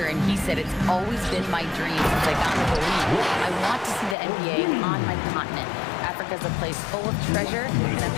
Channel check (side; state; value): right; drops out; at 4.2 s